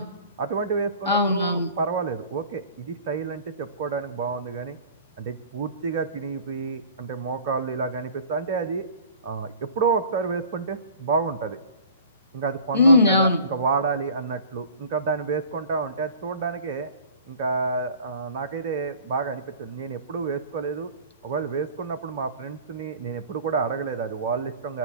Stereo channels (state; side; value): inverted; both; correlation -0.45